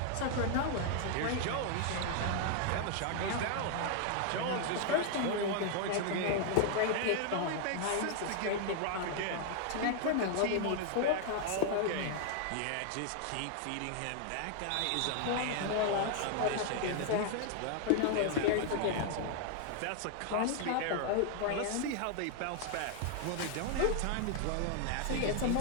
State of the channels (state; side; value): different; both; correlation 0.00